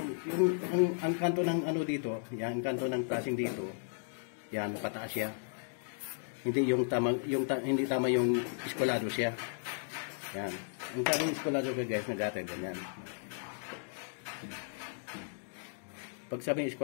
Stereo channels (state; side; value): silent; right; digital silence